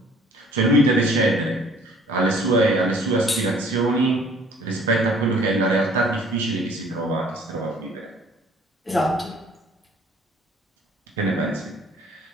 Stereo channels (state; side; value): normal; both; correlation 0.55